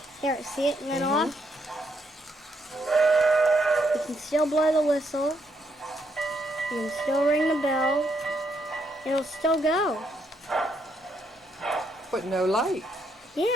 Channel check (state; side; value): normal; both; correlation 0.75